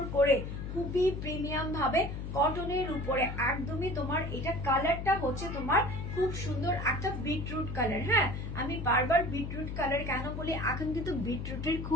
করে খুবই প্রিমিয়াম ভাবে কটনের উপরে, একদমই তোমার এটা কালারটা হচ্ছে তোমার খুব সুন্দর একটা বিটরুট কালার। হ্যাঁ, আমি বারবার বিটরুট কালার কেন বলি, এখন কিন্তু বিটরুটের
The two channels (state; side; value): noise; left; hum, 6 dB below the sound